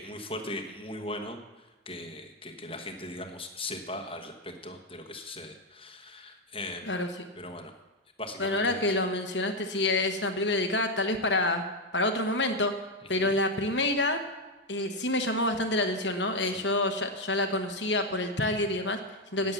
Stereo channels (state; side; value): normal; both; correlation 0.06